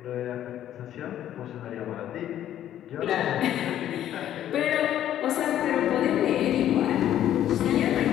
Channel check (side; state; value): right; quieter; 11.5 dB